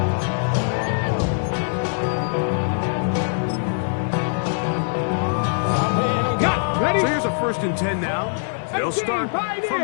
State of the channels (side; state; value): right; silent; digital silence